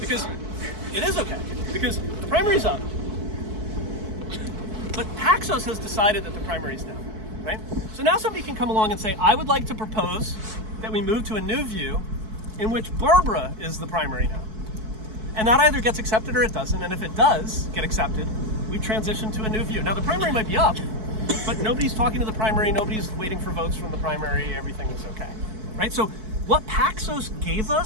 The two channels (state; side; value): late; left; 4.6 ms